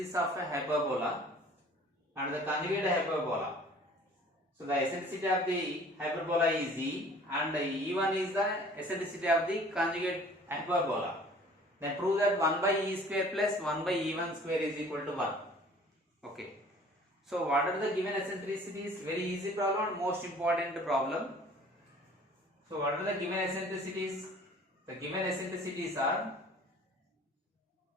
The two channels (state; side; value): normal; both; correlation 0.50